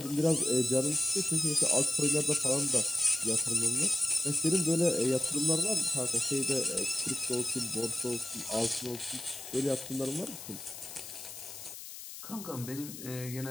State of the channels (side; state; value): left; noise; hiss, 12 dB below the sound